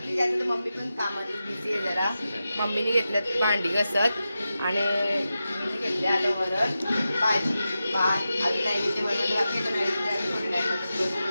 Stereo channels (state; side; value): inverted; both; correlation -0.91